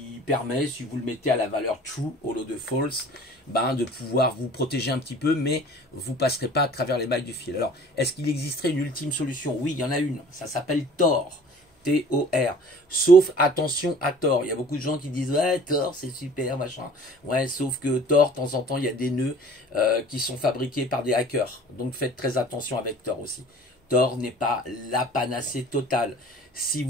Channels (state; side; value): normal; both; correlation 0.48